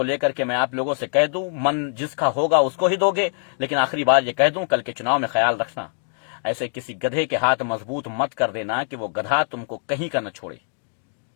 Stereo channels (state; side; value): silent; right; digital silence